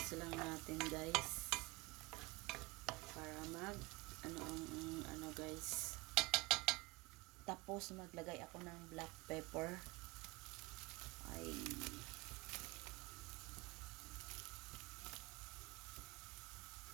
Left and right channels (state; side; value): quieter; left; 23.6 dB